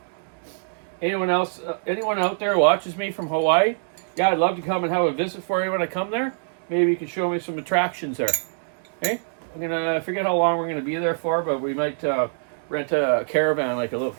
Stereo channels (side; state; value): left; silent; digital silence